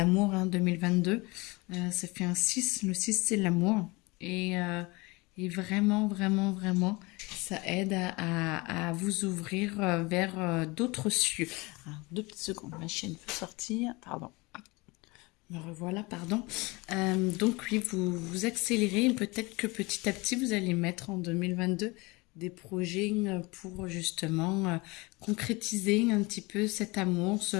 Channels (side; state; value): right; quieter; 24.7 dB